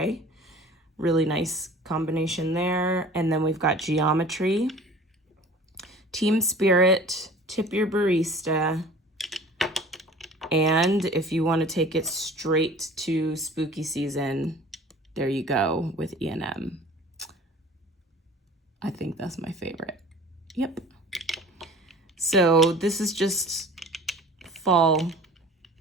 Really nice combination there. And then we've got Geometry, Team Spirit, Tip Your Barista, and if you want to take it straight to spooky season, there you go with E&M. I think that's my favorite. Yep. So this is just fall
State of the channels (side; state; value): both; normal; correlation 0.44